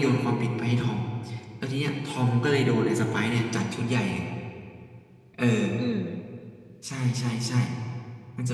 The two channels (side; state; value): both; identical; correlation 1.00